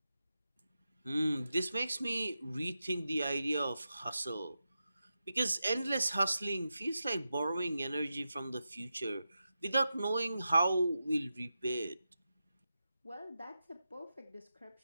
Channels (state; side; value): inverted; both; correlation -0.90